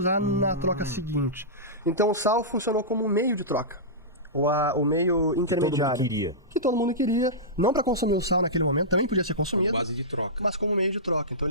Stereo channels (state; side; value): normal; both; correlation -0.16